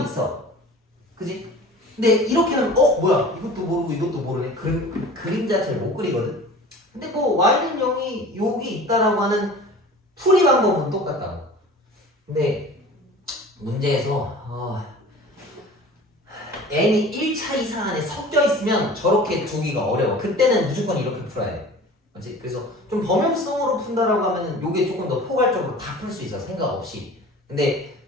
있어. 그지? 근데 이렇게 하면 뭐야 이것도 모르고 이것도 모르네. 그림 자체를 못 그리거든. 근데 뭐 y는 0이 여기 있다라고 하는 풀이 방법은 똑같다고. 근데 문제에서 n이 1차 이상 안에 섞여 있으면 저렇게 두기가 어려워. 그때는 무조건 이렇게 풀어야 돼. 맞지? 그래서 좀 범용성으로 푼다라고 하면은 요게 조금 더 포괄적으로 다 풀 수 있어. 생각 없이. 근데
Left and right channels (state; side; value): normal; both; correlation 0.41